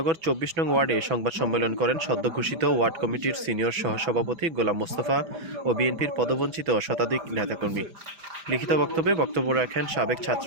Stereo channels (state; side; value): late; left; 6.1 ms